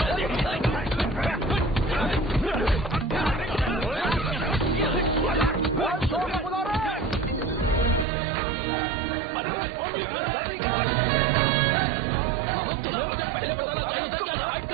मुझे पहले बताना चाहिए था क्या हाइट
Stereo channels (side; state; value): left; drops out; at 8.1 s